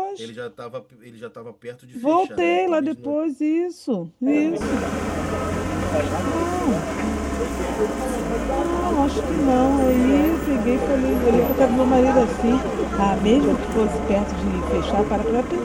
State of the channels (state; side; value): identical; both; correlation 1.00